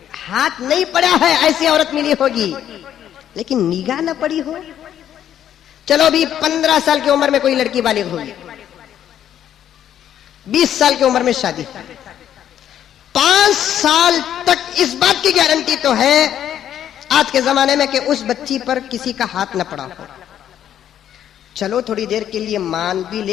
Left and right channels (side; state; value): right; quieter; 10.4 dB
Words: ہاتھ نہیں پڑا ہے ایسی عورت ملی ہوگی، لیکن نگاہ نہ پڑی ہو. چلو بھی 15 سال کی عمر میں کوئی لڑکی بالغ ہوگی، 20 سال کی عمر میں شادی، 5 سال تک اس بات کی گارنٹی تو ہے آج کے زمانے میں کہ اس بچی پر کسی کا ہاتھ نہ پڑا ہو. چلو تھوڑی دیر کے لیے مان بھی